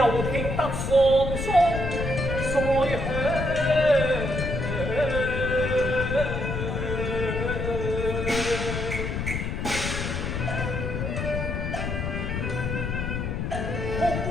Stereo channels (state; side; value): noise; left; rumble, 2 dB below the sound